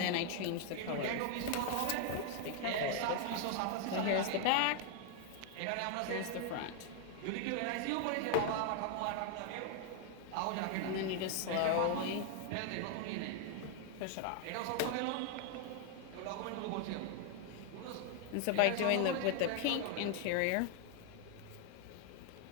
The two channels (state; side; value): different; both; correlation 0.00